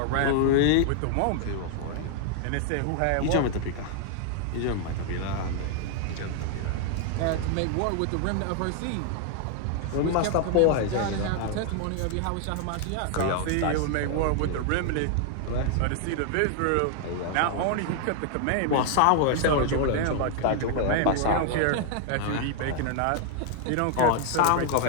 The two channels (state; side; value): different; both; correlation 0.00